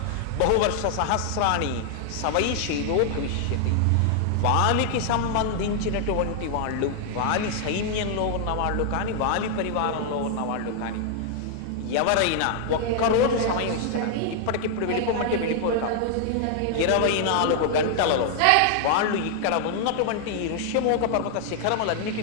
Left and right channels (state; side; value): different; both; correlation 0.00